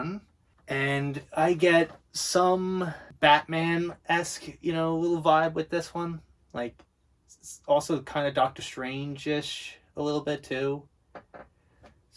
and I get some Batman-esque, little vibe with this one. Like, also kind of Doctor Strange-ish a little bit too.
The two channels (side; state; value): both; identical; correlation 1.00